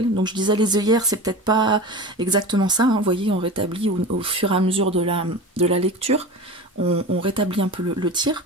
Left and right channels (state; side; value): normal; both; correlation 0.31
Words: Donc je disais les œillères, c'est peut-être pas exactement ça, hein. Vous voyez, on rétablit au fur et à mesure de la lecture. On rétablit un peu le tir.